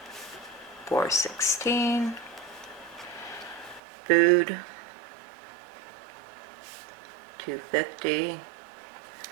416. Food, 250.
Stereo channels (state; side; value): drops out; left; at 3.8 s